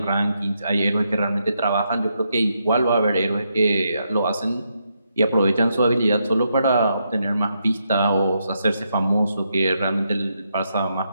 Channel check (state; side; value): inverted; both; correlation -0.80